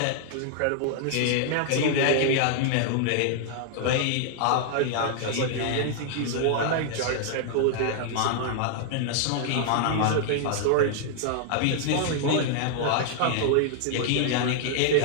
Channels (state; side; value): different; both; correlation -0.01